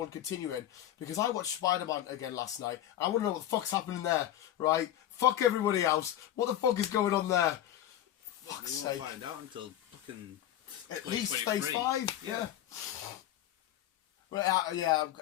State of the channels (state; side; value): quieter; right; 12.1 dB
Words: continuing, because I watched Spider-Man again last night. I want to know what the fuck's happening there, right? Fuck everybody else. What the fuck is going on there? Fuck's sake. We won't find out until fucking... At least Phase 5. Yeah. Right,